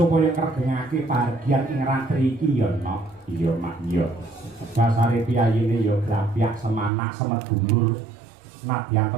kregengake bahagian ing ratri iki ya, Nok. Iya, Mak, iya. Dasare piyayine ya grapyak semanak semedulur. Nadyan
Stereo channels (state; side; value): drops out; left; at 6.9 s